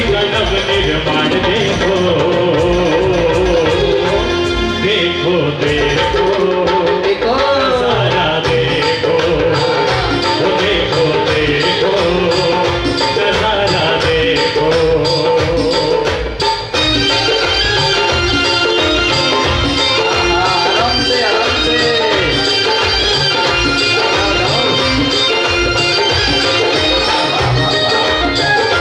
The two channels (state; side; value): identical; both; correlation 1.00